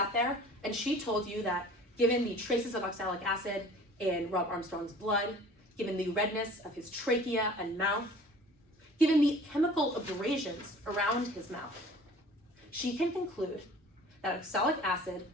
there and she told you that given the traces of oxalic acid in Rob Armstrong's blood, given the redness of his trachea and mouth, given the chemical abrasions around his mouth, she can conclude that oxalic acid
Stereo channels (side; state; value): both; normal; correlation 0.47